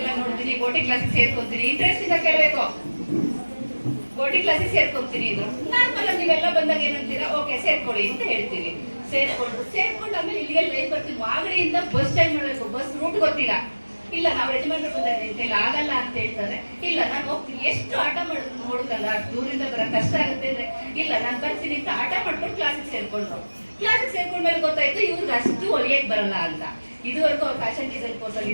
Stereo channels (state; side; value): inverted; both; correlation -1.00